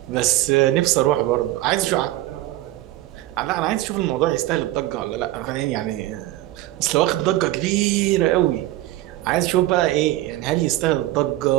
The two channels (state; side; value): quieter; left; 16.2 dB